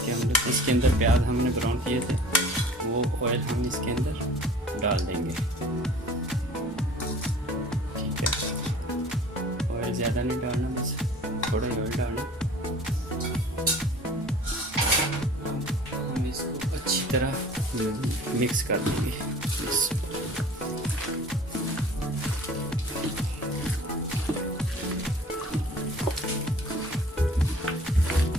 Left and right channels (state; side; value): normal; both; correlation 0.47